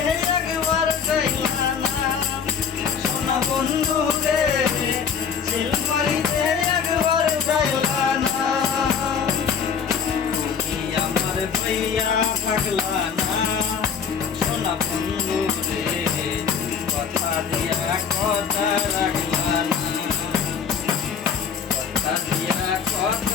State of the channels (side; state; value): right; quieter; 6.8 dB